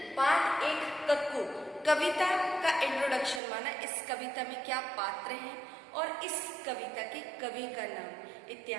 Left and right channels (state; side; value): drops out; left; at 3.4 s